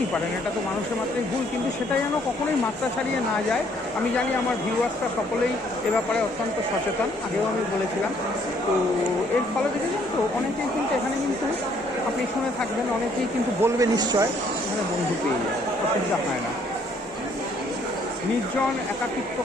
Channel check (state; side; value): normal; both; correlation 0.65